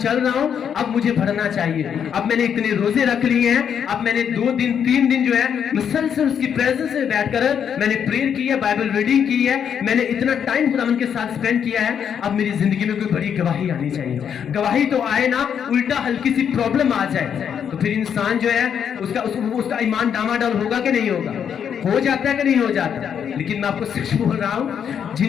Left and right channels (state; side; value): quieter; right; 8.0 dB